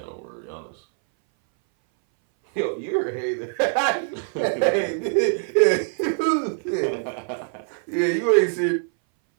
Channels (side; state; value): left; silent; 60 dB below the other